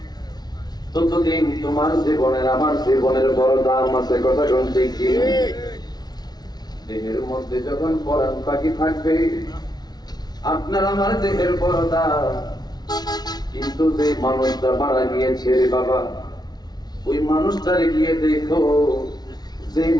ততদিন তোমার জীবনের আমার জীবনের বড় দাম আছে। কথা শুনতে কি? দেহের মধ্যে যখন পরাণ পাখি থাকবে আপনার আমার দেহের বড় দাম। কিন্তু যে মানুষটা মারা গিয়েছে রে বাবা, ওই মানুষটারে গিয়ে দেখো, যে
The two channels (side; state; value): right; late; 0.19 ms